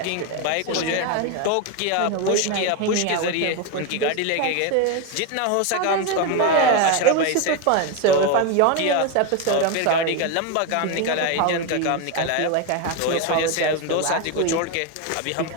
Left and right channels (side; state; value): both; different; correlation 0.02